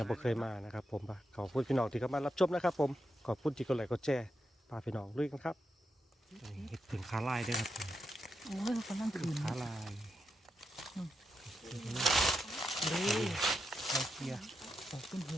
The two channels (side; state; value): both; normal; correlation 0.85